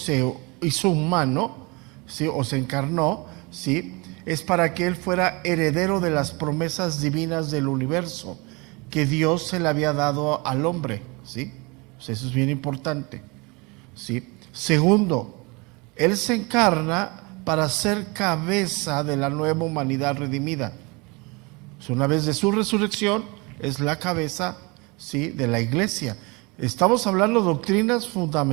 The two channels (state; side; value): quieter; left; 27.3 dB